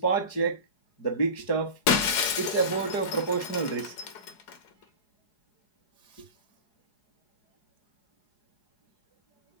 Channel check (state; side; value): late; right; 4.8 ms